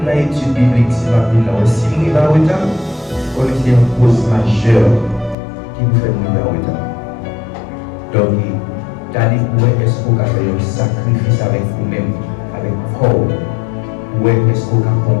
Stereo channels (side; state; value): right; drops out; at 5.4 s